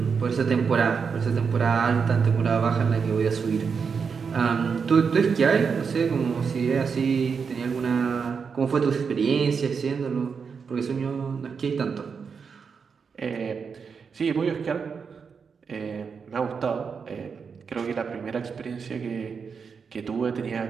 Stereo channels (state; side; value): quieter; left; 5.9 dB